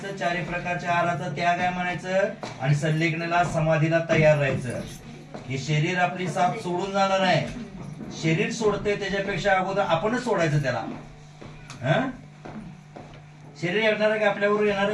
चारी प्रकारच्या आहाराचा त्याग आहे म्हणायचं, आणि संलेखनाला समाधीला तयार राहायचं. हे शरीर आपली साथ सोडून जाणार आहे. शरीर सोडते त्याच्यापेक्षा अगोदर आपणच सोडायचं त्याला. शरीर येणार आहे का आपल्याबरोबर? येणार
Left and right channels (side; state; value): both; identical; correlation 1.00